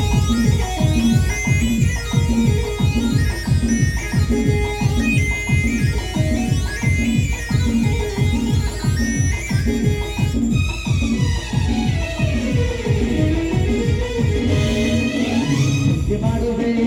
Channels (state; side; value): identical; both; correlation 1.00